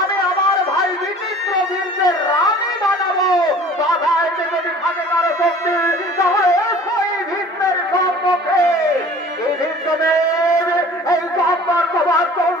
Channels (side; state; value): both; normal; correlation 0.47